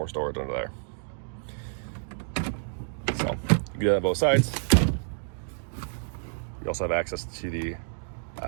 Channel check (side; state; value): left; silent; digital silence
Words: storage under there. So you can do that on both sides. You also have access to the